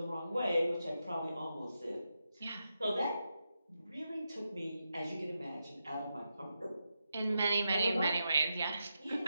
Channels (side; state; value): both; inverted; correlation -0.87